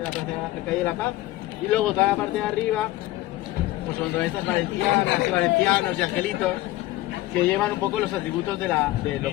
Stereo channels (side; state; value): right; quieter; 17.0 dB